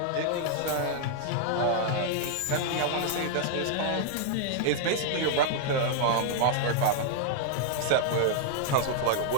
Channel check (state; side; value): different; both; correlation -0.01